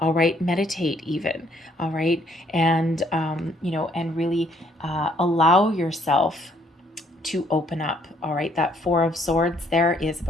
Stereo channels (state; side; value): normal; both; correlation 0.66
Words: right. Meditate even. All right. And, you know, and really allow yourself to open up. All right, that Four of Swords there is